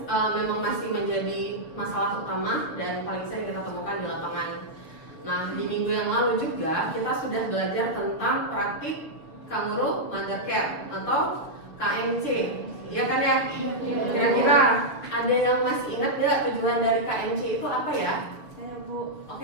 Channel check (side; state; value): right; late; 6.8 ms